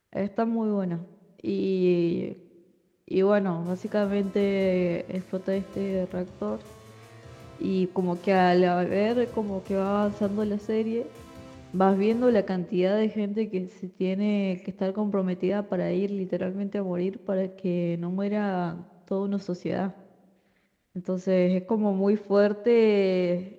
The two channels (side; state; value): both; identical; correlation 1.00